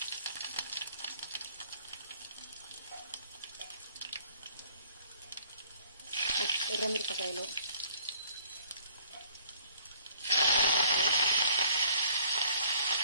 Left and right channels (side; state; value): both; inverted; correlation -0.59